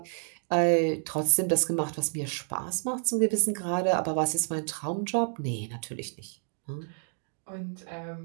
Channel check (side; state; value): left; silent; 56 dB below the other